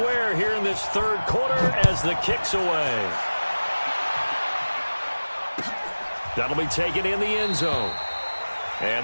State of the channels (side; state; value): both; inverted; correlation -1.00